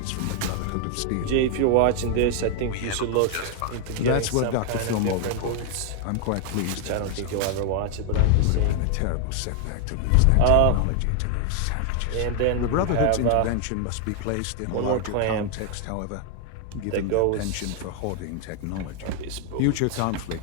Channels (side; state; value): both; different; correlation 0.00